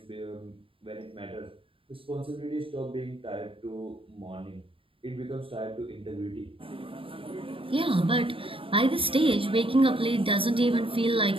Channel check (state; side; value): late; left; 0.26 ms